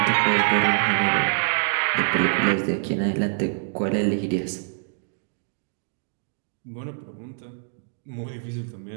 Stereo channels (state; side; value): silent; left; digital silence